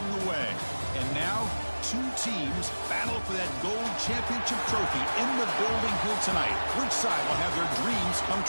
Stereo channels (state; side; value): inverted; both; correlation -1.00